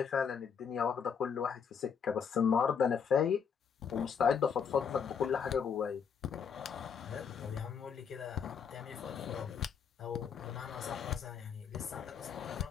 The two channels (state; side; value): quieter; right; 6.9 dB